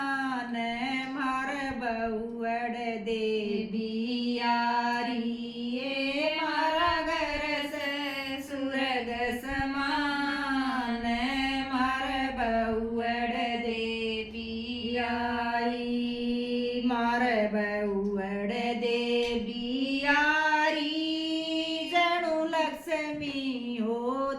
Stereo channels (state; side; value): identical; both; correlation 1.00